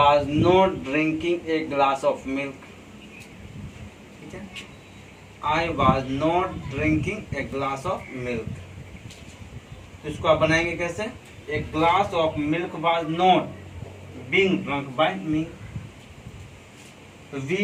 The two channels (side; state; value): both; identical; correlation 1.00